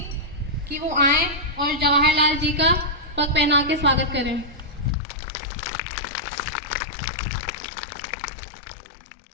कि वो आए और जवाहरलाल जी का पग पहना के स्वागत करें।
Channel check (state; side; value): drops out; right; at 5.0 s